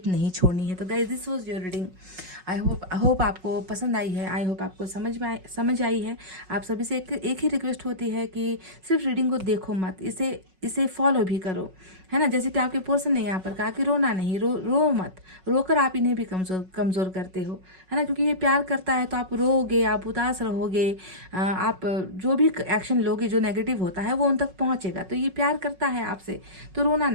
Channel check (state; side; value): late; left; 5.4 ms